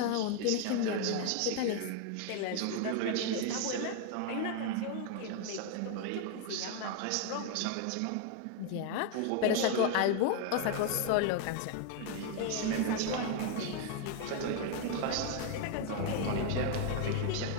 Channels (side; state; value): both; different; correlation 0.01